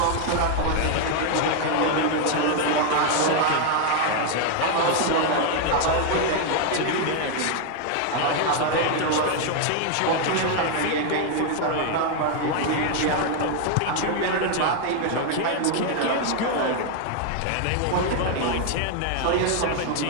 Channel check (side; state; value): both; different; correlation 0.00